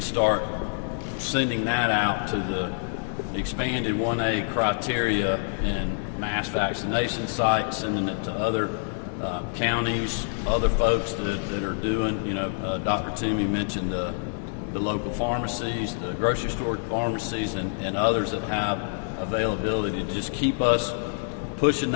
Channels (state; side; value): silent; right; digital silence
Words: start sending that out to the expanded 1A criteria and mass vaccination sites, sending it to other counties, other folks that are doing, Dr. Toomey mentioned the local pharmacies, the grocery store pharmacies, and others that have availability to just keep us pushing